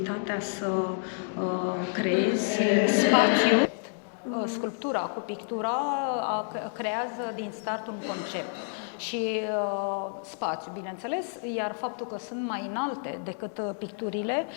să creezi spațiu. Sculptura cu pictura creează din start un concept și spațiu, bineînțeles, iar faptul că sunt mai înalte decât picturile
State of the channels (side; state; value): right; silent; 58 dB below the other